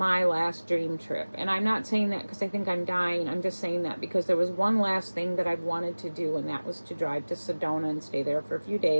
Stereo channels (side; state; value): both; inverted; correlation -1.00